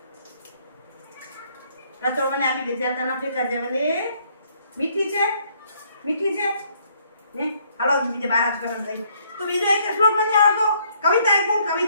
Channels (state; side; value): inverted; both; correlation -0.67